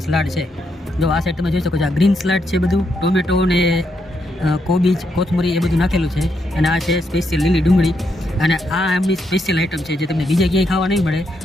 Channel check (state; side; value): normal; both; correlation 0.79